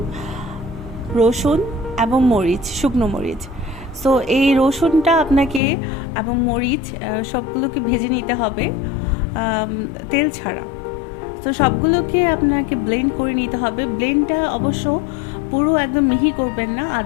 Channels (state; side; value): drops out; right; at 5.6 s